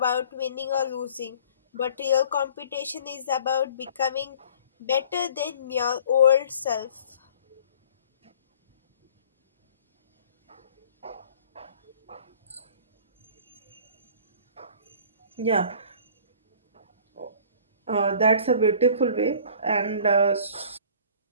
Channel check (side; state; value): both; inverted; correlation -0.49